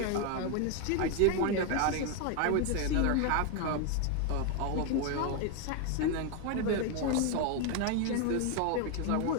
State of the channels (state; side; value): different; both; correlation 0.01